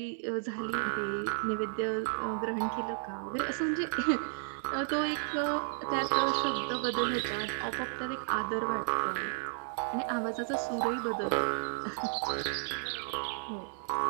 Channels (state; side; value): silent; left; 56 dB below the other